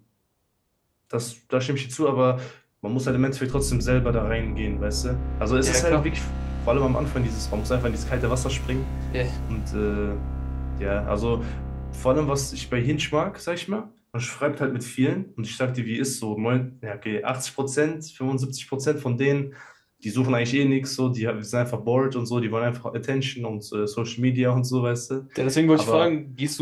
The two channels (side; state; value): both; identical; correlation 1.00